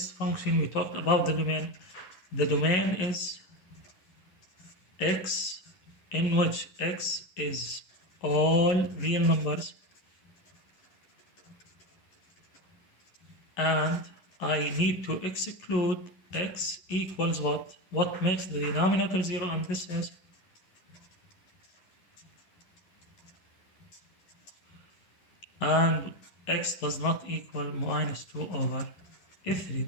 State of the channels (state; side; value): late; right; 11 ms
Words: function? We talked about the domain. The domain is x in which x is all real numbers and I need to exclude x equals what? What makes the denominator 0, and this is and x does not equal minus 2 over 3.